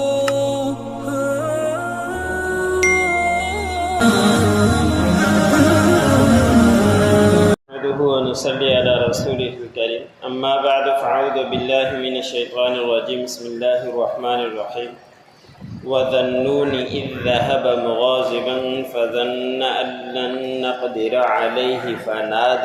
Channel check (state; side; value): identical; both; correlation 1.00